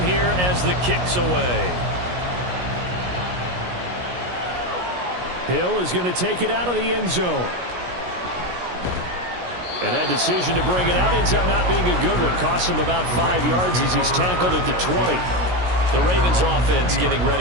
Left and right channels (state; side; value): late; left; 17 ms